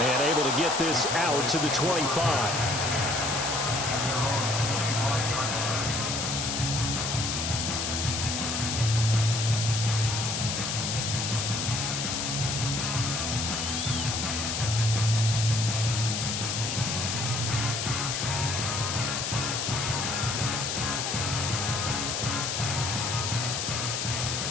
able to get this out to the 25.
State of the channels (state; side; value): noise; left; hiss, 1 dB below the sound